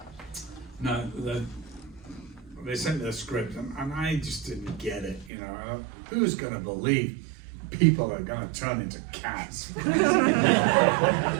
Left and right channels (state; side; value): drops out; left; at 5.3 s